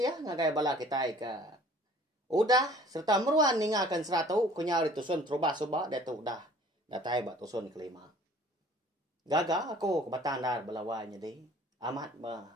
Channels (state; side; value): normal; both; correlation 0.51